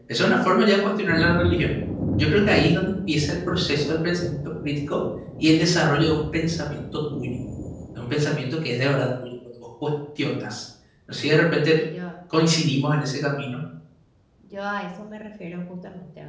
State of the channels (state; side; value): identical; both; correlation 1.00